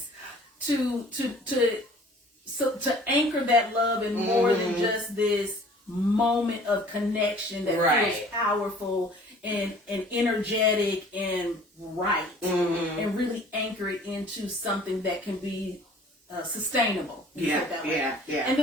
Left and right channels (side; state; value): both; normal; correlation 0.50